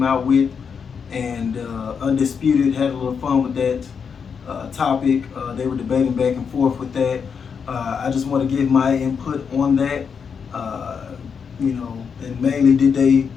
out with. And Undisputed had a little fun with that topic. They were debating back and forth with that. I just want to give my input on that. And mainly, did they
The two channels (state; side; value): quieter; right; 6.4 dB